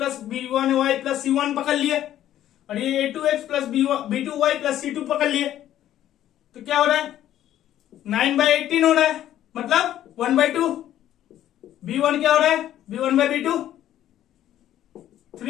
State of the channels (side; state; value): right; quieter; 12.1 dB